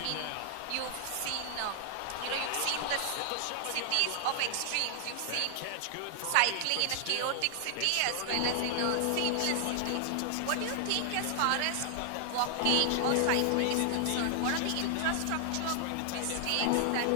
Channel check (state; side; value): different; both; correlation 0.00